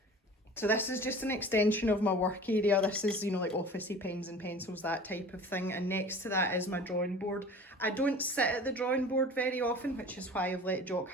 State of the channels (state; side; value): normal; both; correlation 0.42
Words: So this is just an extension of my work area. This is, you know, like officey pens and pencils, that type of thing. And next to that is my drawing board. I don't sit at the drawing board very often, which is why I've let Jock